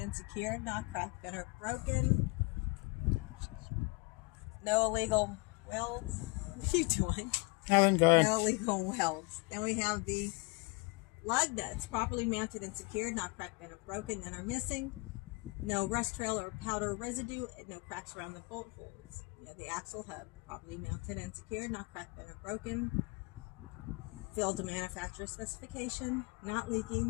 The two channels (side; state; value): right; quieter; 27.6 dB